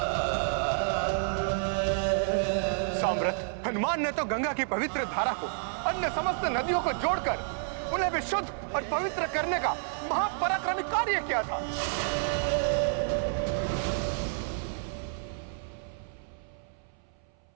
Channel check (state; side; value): silent; left; 57 dB below the other